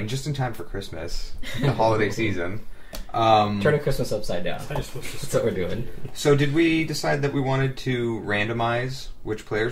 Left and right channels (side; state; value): both; identical; correlation 1.00